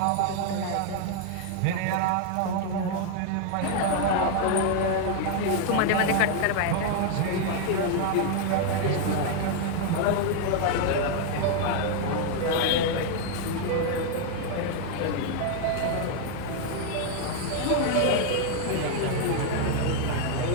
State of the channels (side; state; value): both; different; correlation 0.00